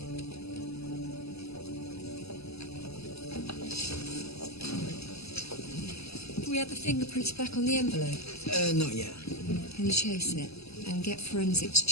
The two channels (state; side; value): late; right; 0.79 ms